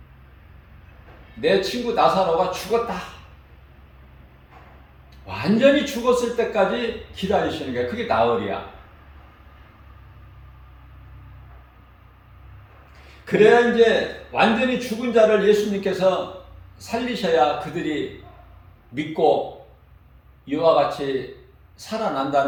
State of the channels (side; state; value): both; identical; correlation 1.00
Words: 내 친구 나사로가 죽었다. 완전히 죽었을 때까지 기다리시는 거예요. 그게 나흘이야. 그래야 이제 완전히 죽은 자를 예수님께서 살리셔야 그들이 믿고 이와 같이